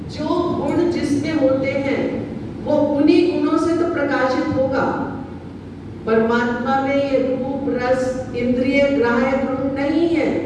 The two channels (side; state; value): both; identical; correlation 1.00